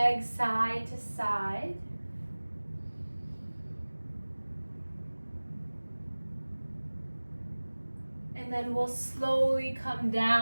side to side. And then we'll slowly come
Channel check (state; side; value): inverted; both; correlation -1.00